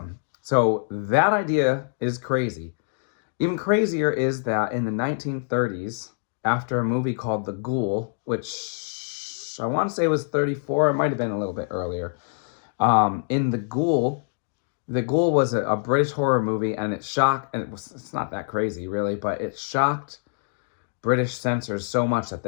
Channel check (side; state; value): right; silent; digital silence